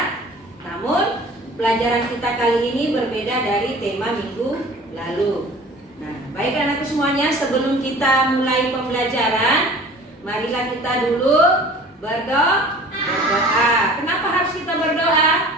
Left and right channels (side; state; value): both; normal; correlation 0.45